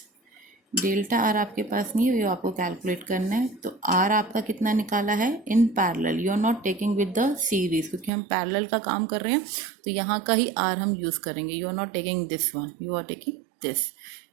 Delta R आपके पास नहीं है, ये आपको कैलकुलेट करना है. तो R आपका कितना निकाला है in parallel. You are not taking with the series, क्योंकि हम पैरेलल का काम कर रहे हैं तो यहाँ का ही R हम यूज़ करेंगे. You are not taking this one, you are taking this.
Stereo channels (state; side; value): drops out; left; at 8.1 s